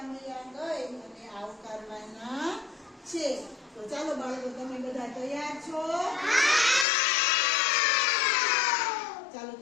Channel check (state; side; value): drops out; right; at 6.9 s